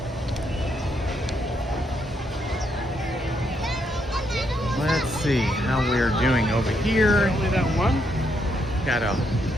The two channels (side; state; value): both; normal; correlation 0.76